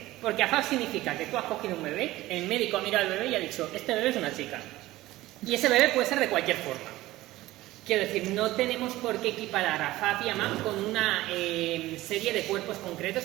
Porque AFAP significa que tú has cogido un bebé, el médico ha mirado al bebé y ha dicho, este bebé es una chica. Y ese bebé puede ser de cualquier forma. Quiero decir, no tenemos por qué equiparar a AFAP y a MAP con una serie de cuerpos concretos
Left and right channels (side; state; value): left; quieter; 17.1 dB